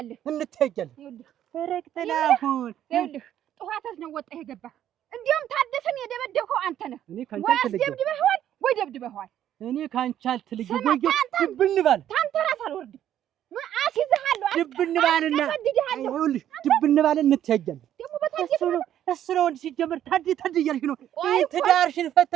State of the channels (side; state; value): left; quieter; 11.1 dB